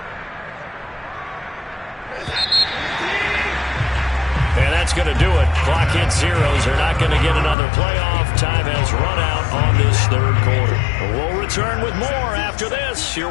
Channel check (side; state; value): right; drops out; at 7.6 s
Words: And that's going to do it. Clock hits zeros. They're not going to get another playoff. Time has run out on this third quarter. We'll return with more after this. You're